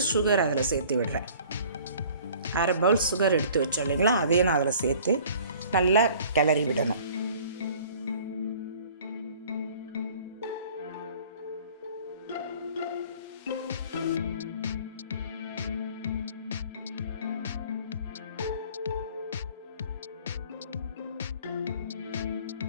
சுகர் அதில் சேர்த்து விடுறேன். அரை பவுல் சுகர் எடுத்து வச்சோம் இல்லைங்களா, அதையும் நான் அதில் சேர்த்து நல்லா கிளறி விடணும்.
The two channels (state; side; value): inverted; both; correlation -0.51